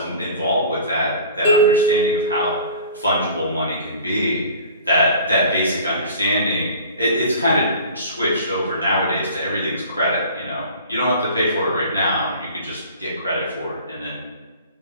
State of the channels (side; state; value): both; inverted; correlation -0.44